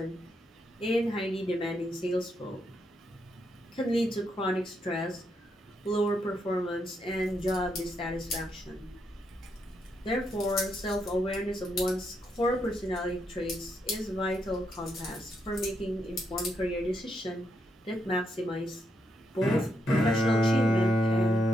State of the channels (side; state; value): both; normal; correlation 0.79